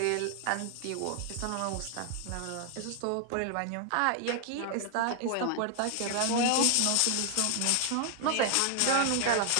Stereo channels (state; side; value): different; both; correlation 0.00